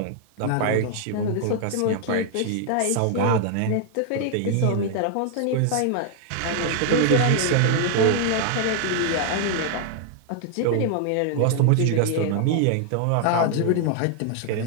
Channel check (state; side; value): different; both; correlation 0.00